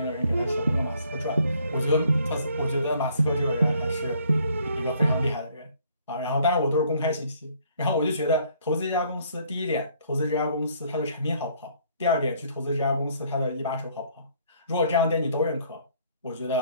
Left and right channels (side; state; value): both; inverted; correlation -0.62